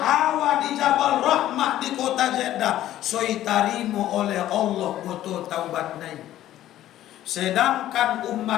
Hawa di Jabal Rahmah di kota Jeddah soi tarimo oleh Allah boto taubat nai. Sedangkan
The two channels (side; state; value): right; quieter; 13.2 dB